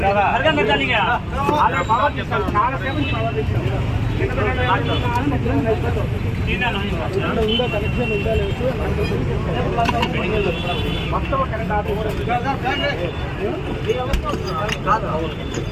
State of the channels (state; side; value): identical; both; correlation 1.00